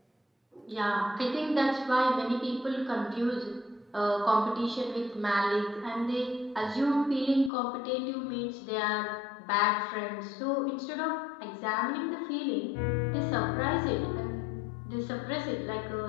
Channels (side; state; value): right; drops out; at 7.5 s